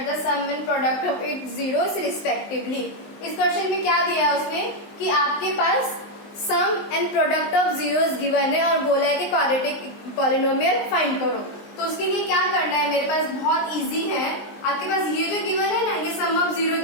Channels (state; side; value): late; right; 19 ms